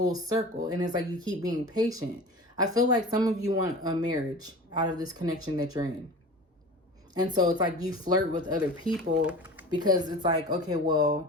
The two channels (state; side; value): normal; both; correlation 0.36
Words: circle. And it's like you keep being patient. I feel like some of you want a marriage out of this connection that you're in. And so it's like you flirt with other people because it's like, okay,